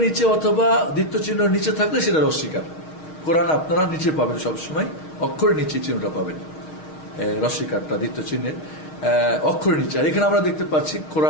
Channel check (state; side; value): late; right; 6.3 ms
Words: নিচে অথবা দ্বিত্ব চিহ্নের নিচে থাকলে সেটা রসিকার। কোরআন আপনারা নিচে পাবেন, সবসময় অক্ষরের নিচে চিহ্নটা পাবেন, রসিকারটা দ্বিত্ব চিহ্নের অক্ষরের নিচে। আর এখানে আমরা দেখতে পাচ্ছি